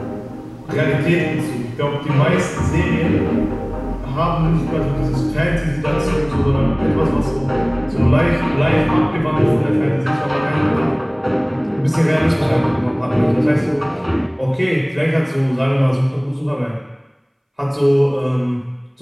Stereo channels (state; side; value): identical; both; correlation 1.00